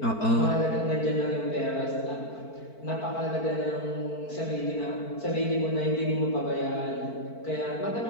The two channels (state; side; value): late; right; 4.5 ms